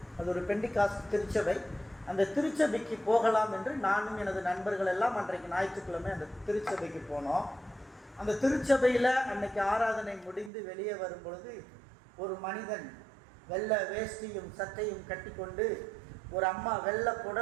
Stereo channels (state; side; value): drops out; left; at 10.5 s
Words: அது ஒரு பெண்டிகாஸ்ட் திருச்சபை, அந்த திருச்சபைக்கு போகலாம் என்று நானும் எனது நண்பர்கள் எல்லாம் அன்றைக்கு ஞாயிற்றுக்கிழமை அந்த திருச்சபைக்கு போனோம். அந்த திருச்சபையில் அன்னைக்கு ஆராதனை முடிந்து வெளியே வரும் பொழுது ஒரு மனிதன் வெள்ளை வேஷ்டியும் சட்டையும் கட்டிக்கொண்டு, ஒரு அம்மா வெள்ளை